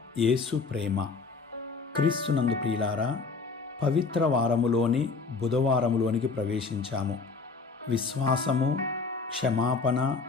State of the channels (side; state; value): right; quieter; 4.4 dB